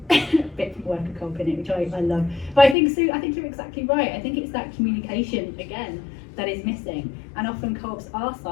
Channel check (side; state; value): right; drops out; at 2.8 s